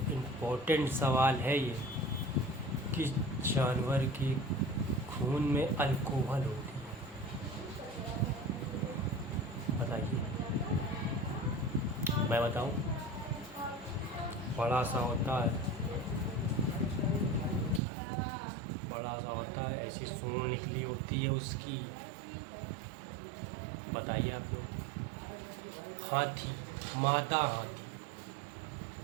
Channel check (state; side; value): drops out; left; at 17.8 s